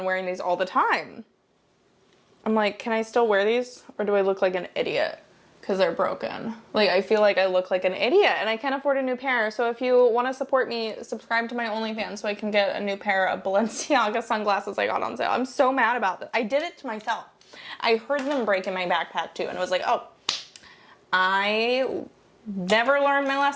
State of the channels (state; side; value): identical; both; correlation 1.00